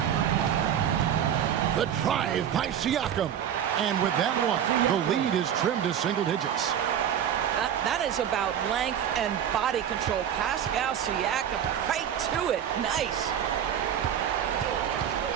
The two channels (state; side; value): quieter; left; 9.4 dB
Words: The drive by Siakam. And with that one, the lead is trimmed to single digits. That is about length and body control. Pascal Siakam right to it. Nice.